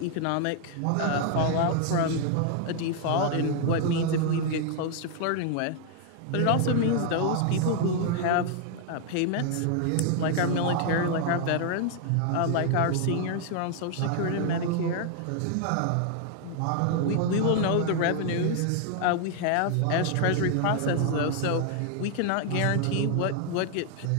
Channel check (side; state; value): both; different; correlation 0.00